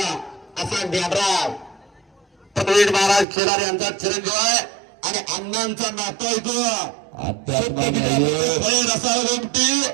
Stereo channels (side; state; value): left; drops out; at 3.2 s